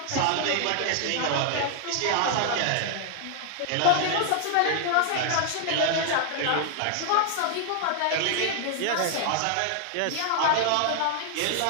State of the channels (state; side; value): different; both; correlation 0.00